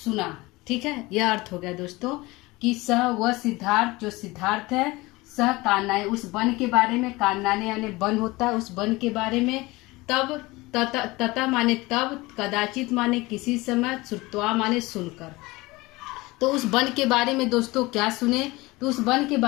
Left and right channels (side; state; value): right; quieter; 21.6 dB